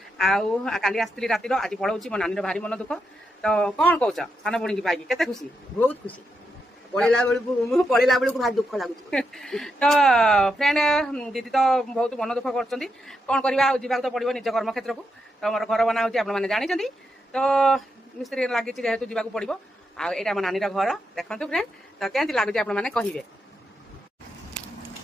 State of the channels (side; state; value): both; normal; correlation 0.84